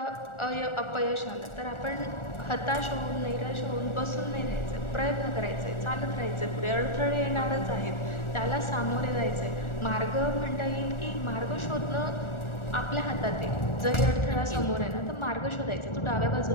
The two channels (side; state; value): right; late; 1.4 ms